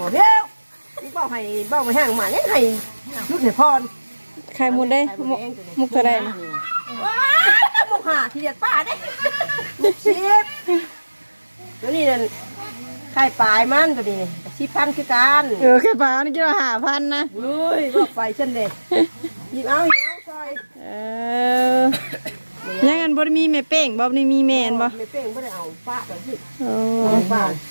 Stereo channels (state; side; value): inverted; both; correlation -1.00